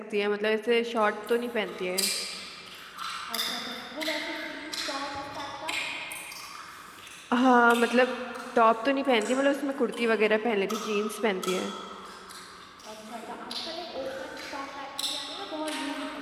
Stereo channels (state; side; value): identical; both; correlation 1.00